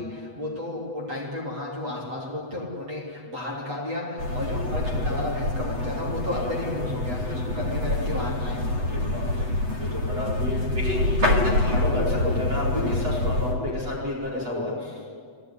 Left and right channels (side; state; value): left; late; 8.1 ms